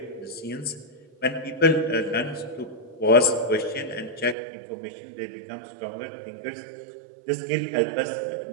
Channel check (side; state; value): left; drops out; at 4.4 s